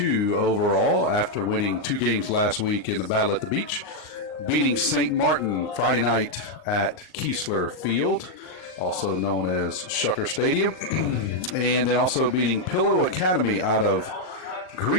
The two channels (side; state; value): right; late; 38 ms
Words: overall after winning 2 games last week in the Battle at the Beach, beating St. Martin Friday night at Keesler Field, also known as Shucker Stadium, and then also beating Pillow Academy out of